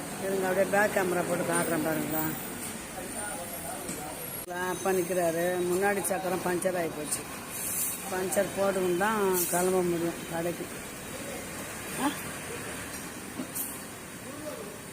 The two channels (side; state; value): both; identical; correlation 1.00